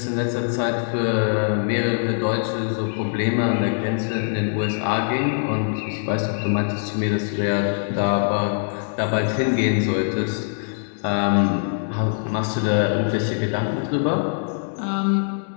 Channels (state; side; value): silent; right; digital silence